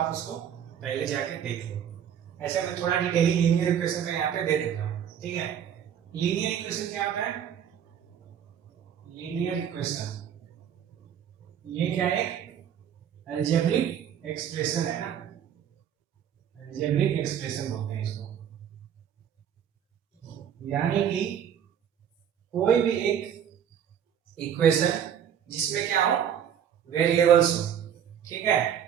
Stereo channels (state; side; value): quieter; left; 9.0 dB